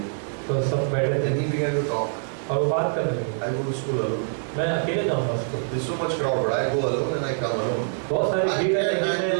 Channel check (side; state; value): left; silent; 62 dB below the other